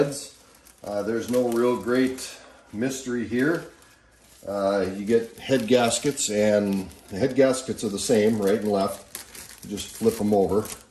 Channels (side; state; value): both; identical; correlation 1.00